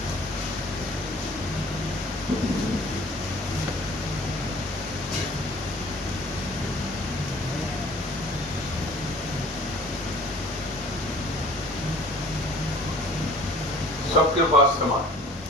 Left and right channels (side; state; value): both; normal; correlation 0.50